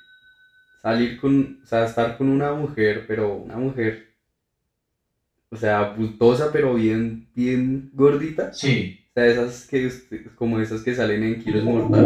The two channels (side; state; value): both; identical; correlation 1.00